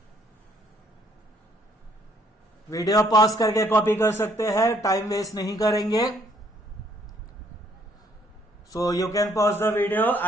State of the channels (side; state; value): both; normal; correlation 0.65